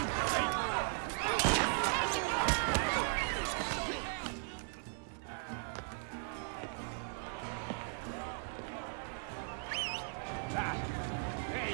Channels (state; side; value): silent; left; 53 dB below the other